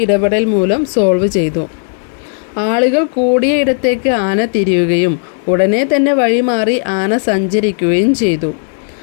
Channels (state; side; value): silent; right; 69 dB below the other